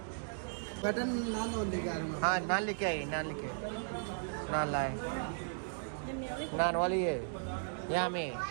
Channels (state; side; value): silent; left; digital silence